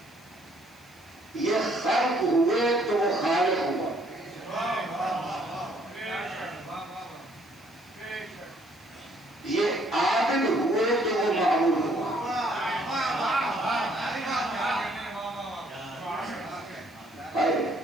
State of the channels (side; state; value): left; noise; hiss, 27 dB below the sound